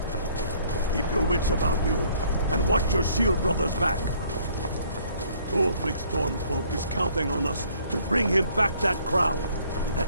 Keep your wits about you, and watch your shield brothers back. Ulfric Stormcloak is counting on us to bring him back that crown, and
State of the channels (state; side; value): inverted; both; correlation -0.61